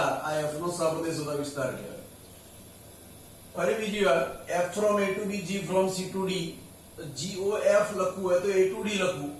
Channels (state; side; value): identical; both; correlation 1.00